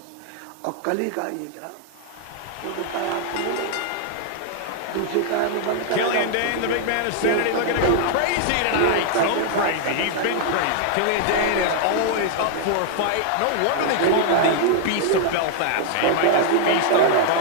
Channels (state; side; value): different; both; correlation 0.00